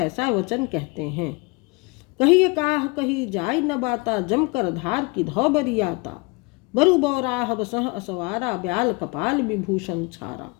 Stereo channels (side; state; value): right; quieter; 27.9 dB